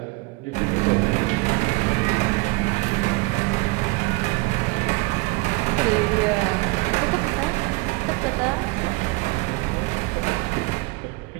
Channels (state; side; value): quieter; left; 24.8 dB